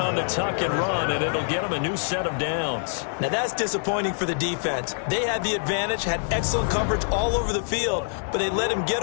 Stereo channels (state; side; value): silent; right; 62 dB below the other